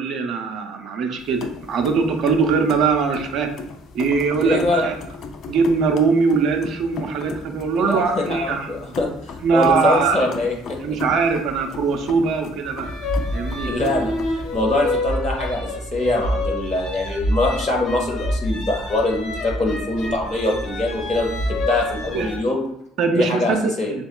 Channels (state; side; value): normal; both; correlation 0.59